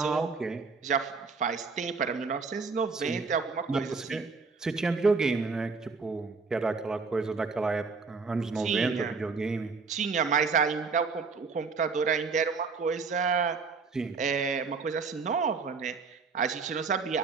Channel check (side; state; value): left; quieter; 4.8 dB